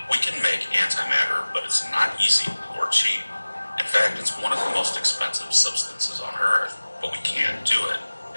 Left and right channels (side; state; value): both; inverted; correlation -1.00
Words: We can make antimatter, but it's not easy or cheap. In fact, it's one of the most expensive substances on Earth, but we can't do it.